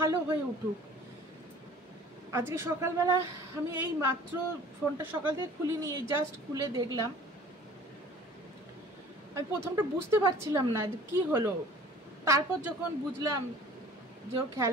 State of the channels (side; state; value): both; normal; correlation 0.47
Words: হয়ে উঠুক। আজকে সকালবেলা আমি এই মাত্র ফোনটা সকাল থেকে খুলিনি, এই জাস্ট খুলে দেখলাম। আমি প্রথমটা বুঝতে পারছিলাম না যে কি হলো, তারপর যখন বুঝলাম যে ও